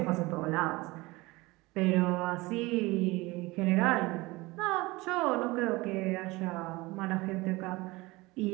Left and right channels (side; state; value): left; quieter; 22.0 dB